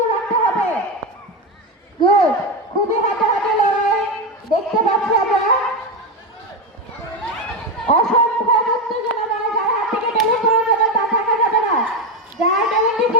রাখতে হবে। গুড, খুবই হাতে লড়াই দেখতে পাচ্ছি আমরা। অসংখ্য উত্তেজনা, যার হাত থেকে বেলুন পড়ে যাবে তা থাকা যাবে না, যার বেলুনটি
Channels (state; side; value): normal; both; correlation 0.13